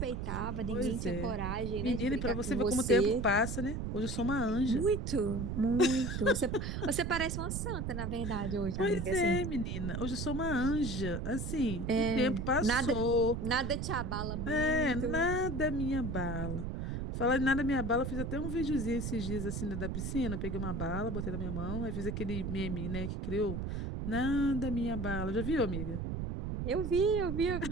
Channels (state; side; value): noise; right; rumble, 3 dB below the sound